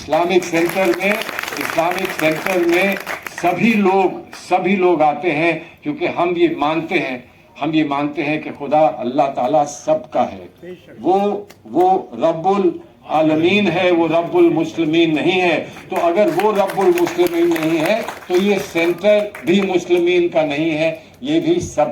सेंटर में सभी लोग आते हैं, क्योंकि हम ये मानते हैं कि खुदा अल्लाह ताला सबका है, वो रब्बुल आलमीन है, वो रब्बुल मुस्लिमीन नहीं है। तो अगर वो रब्बुल मुस्लिमीन नहीं है तो ये सेंटर भी मुस्लिमीन का नहीं है, ये भी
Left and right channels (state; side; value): identical; both; correlation 1.00